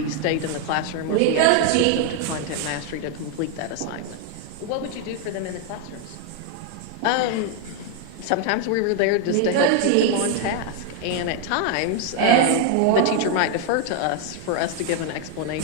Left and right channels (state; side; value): different; both; correlation 0.00